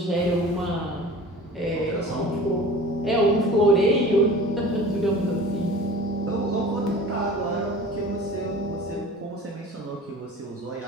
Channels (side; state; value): both; normal; correlation 0.41